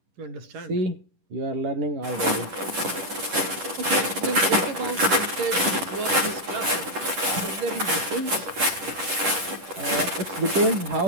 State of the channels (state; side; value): late; left; 10 ms